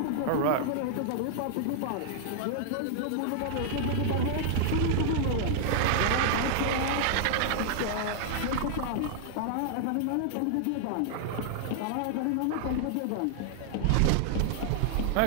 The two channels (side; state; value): both; different; correlation -0.01